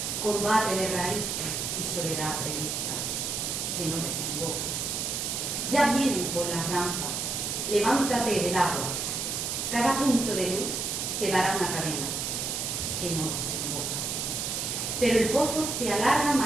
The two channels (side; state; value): right; noise; hiss, 2 dB below the sound